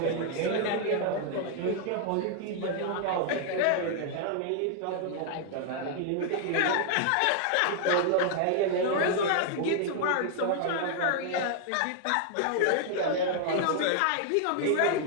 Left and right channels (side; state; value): both; different; correlation 0.00